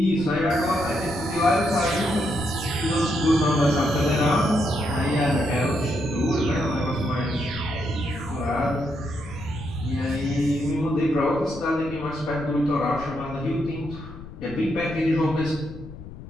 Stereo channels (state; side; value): noise; left; rumble, 14 dB below the sound